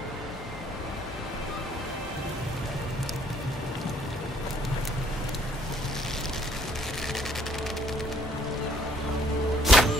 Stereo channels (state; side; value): normal; both; correlation 0.63